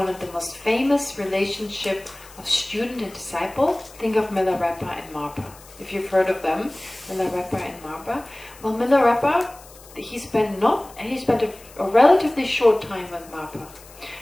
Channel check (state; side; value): noise; left; hiss, 22 dB below the sound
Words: of the most famous relationship of student and disciple, think of Milarepa and Marpa. If you've heard of them, Milarepa and Marpa. Well, Milarepa, he spent a relatively short time with Marpa.